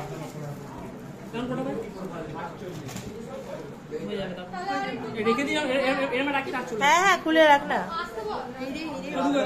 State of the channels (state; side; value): identical; both; correlation 1.00